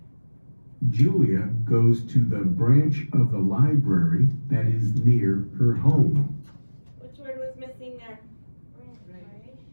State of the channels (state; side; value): inverted; both; correlation -1.00